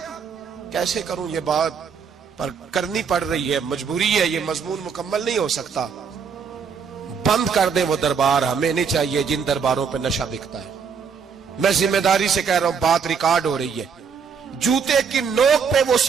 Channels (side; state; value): left; quieter; 6.3 dB